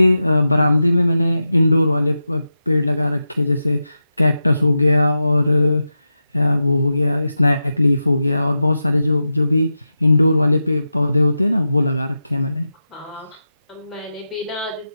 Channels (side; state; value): both; inverted; correlation -0.91